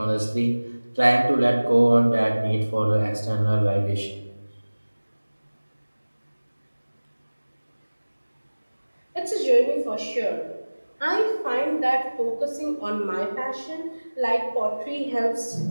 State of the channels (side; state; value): both; inverted; correlation -1.00